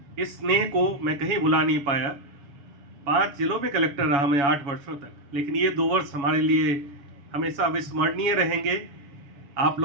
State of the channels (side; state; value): left; late; 7.1 ms